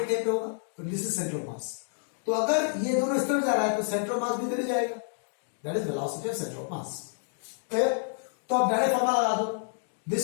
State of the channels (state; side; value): silent; right; digital silence